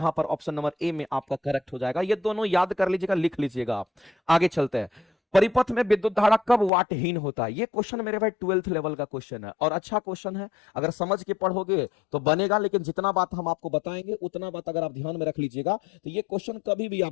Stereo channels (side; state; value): right; drops out; at 6.7 s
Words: पर ऑप्शन नंबर ए में आपका करेक्ट हो जाएगा। ये दोनों याद कर लीजिएगा, लिख लीजिएगा आप। आगे चलते हैं। परिपथ में विद्युत धारा कब वाटहीन होता है? ये क्वेश्चन मेरे भाई 12th लेवल का क्वेश्चन है और अच्छा क्वेश्चन है। अगर समझ के पढ़ोगे तो बनेगा, लेकिन जितना बात हम आपको बताएंगे उतना बात अगर आप ध्यान में रख लीजिएगा तो ये क्वेश्चन कभी भी आप